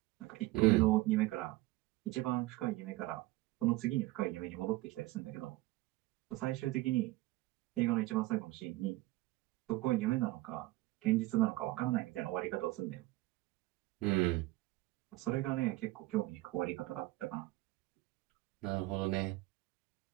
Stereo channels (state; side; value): quieter; left; 19.0 dB